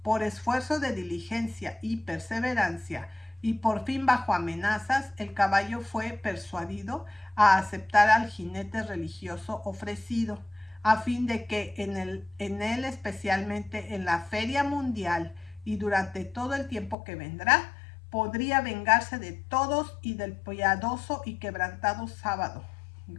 por esfuerzo de diligencia y perseverancia, y por fin bajo amenazas, el caballo fue persuadido a aceptar al jinete religioso ofrecido, a fin de que en él, especialmente en la feria mundial y durante todo el tiempo que vendrá, podría vengarse de todos y del piadoso y quebrantado sábado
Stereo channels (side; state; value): right; drops out; at 16.9 s